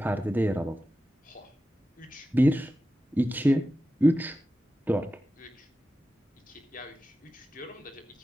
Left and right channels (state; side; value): normal; both; correlation 0.93